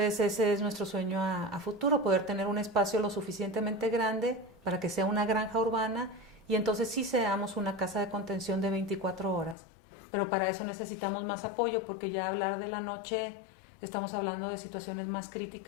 ese es nuestro sueño a futuro, poder tener un espacio lo suficientemente grande para que sea una granja urbana y entonces sí seamos una casa de contención de 24 horas. Pero para eso necesitamos más apoyo, porque ya hablar de la noche estamos hablando de situaciones más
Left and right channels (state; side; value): drops out; right; at 9.6 s